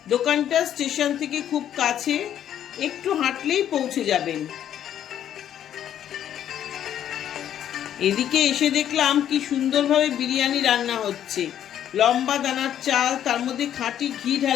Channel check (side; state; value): right; quieter; 10.4 dB